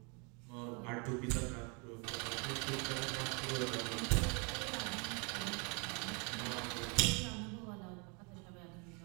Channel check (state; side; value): quieter; left; 33.3 dB